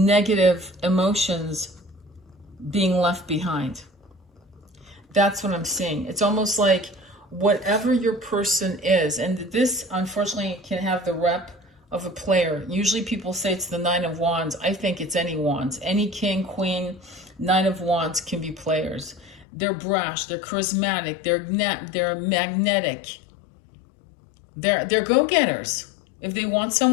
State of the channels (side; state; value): right; drops out; at 19.5 s